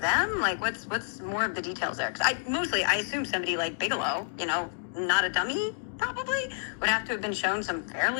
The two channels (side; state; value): right; silent; digital silence